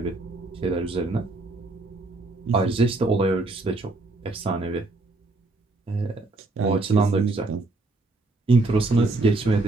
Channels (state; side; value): quieter; left; 3.2 dB